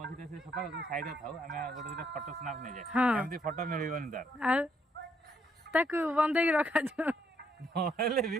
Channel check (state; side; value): normal; both; correlation 0.72